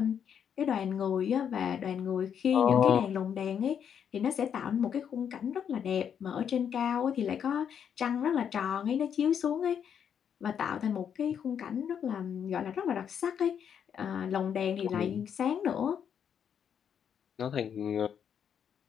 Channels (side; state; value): right; quieter; 8.2 dB